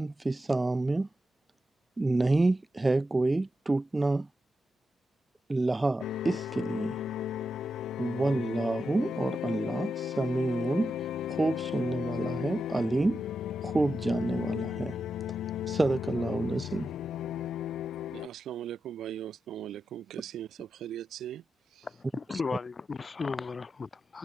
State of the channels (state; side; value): normal; both; correlation 0.88